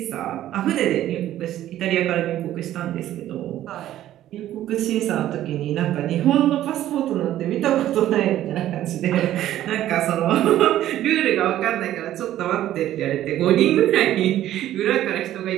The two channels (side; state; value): left; quieter; 12.9 dB